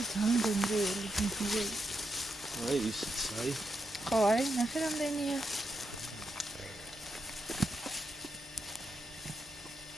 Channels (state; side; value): normal; both; correlation 0.82